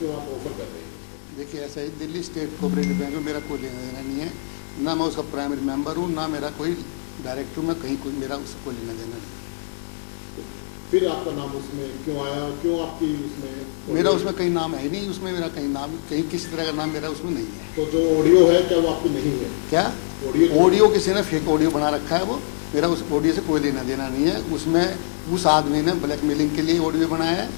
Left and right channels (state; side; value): silent; right; digital silence